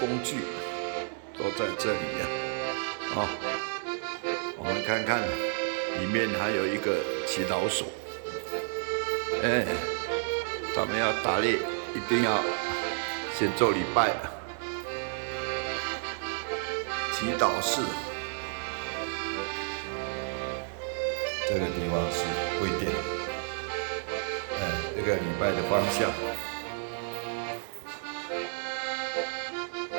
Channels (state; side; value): silent; left; 57 dB below the other